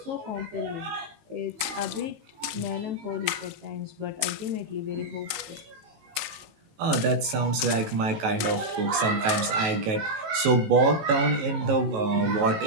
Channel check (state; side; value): late; left; 19 ms